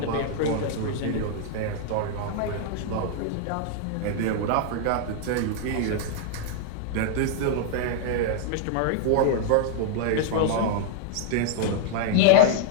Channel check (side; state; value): both; different; correlation -0.01